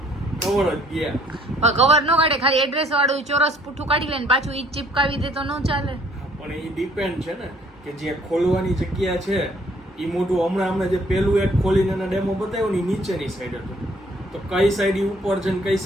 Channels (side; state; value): both; normal; correlation 0.61